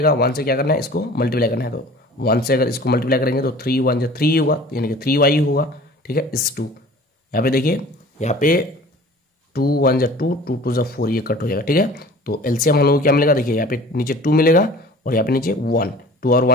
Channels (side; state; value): both; normal; correlation 0.45